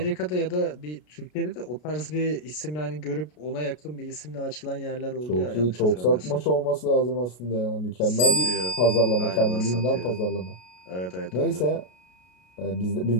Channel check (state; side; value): late; right; 33 ms